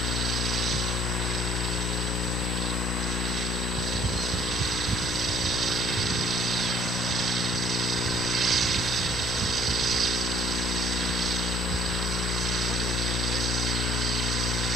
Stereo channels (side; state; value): left; noise; hum, 3 dB below the sound